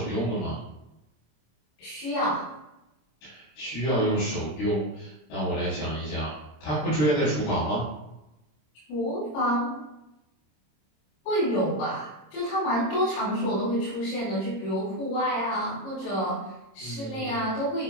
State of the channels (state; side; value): late; right; 26 ms